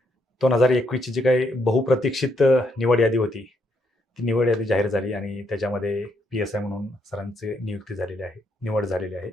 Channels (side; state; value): both; normal; correlation 0.75